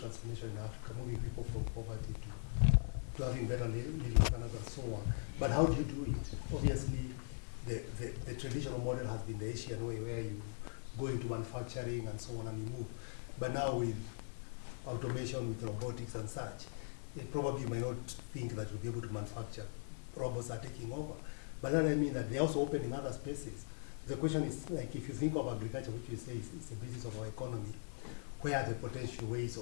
in Africa, moving people from poverty to having better living standards and so on. But how do you do it? Obviously, the traditional model has been the Asian way, where you go into manufacturing and so on and you move. But now with automation, with robotics and such, probably you might not think that you'll be able to manufacture. Robots are taking over. But then I mean that they also open in other spaces. The question is, like, if you think of agriculture, which you say is the basis of our economy, where are the potential ways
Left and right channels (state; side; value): silent; right; 51 dB below the other